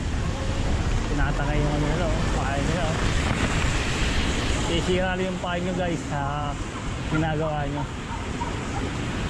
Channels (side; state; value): both; identical; correlation 1.00